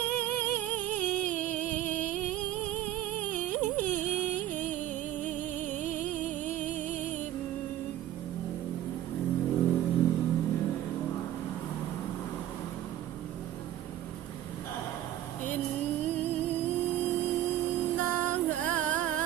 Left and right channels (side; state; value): left; quieter; 12.7 dB